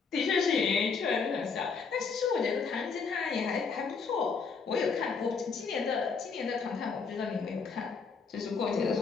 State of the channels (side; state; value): right; quieter; 5.3 dB